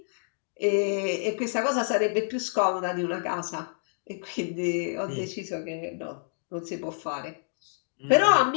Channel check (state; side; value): silent; right; digital silence